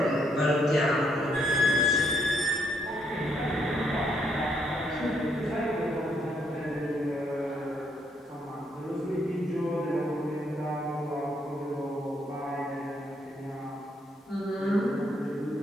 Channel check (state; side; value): normal; both; correlation 0.73